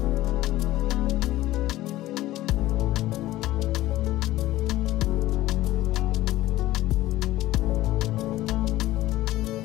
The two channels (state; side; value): quieter; right; 15.9 dB